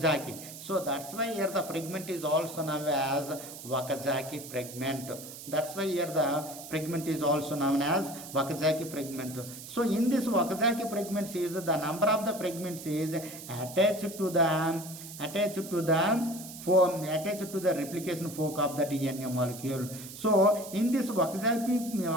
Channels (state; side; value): noise; right; hiss, 13 dB below the sound